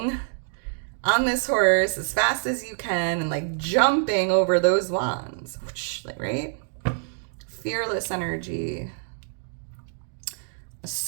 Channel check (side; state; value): left; silent; 61 dB below the other